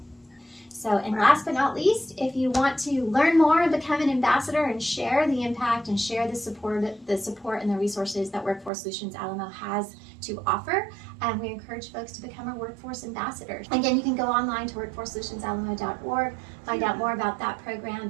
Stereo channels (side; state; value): left; drops out; at 8.7 s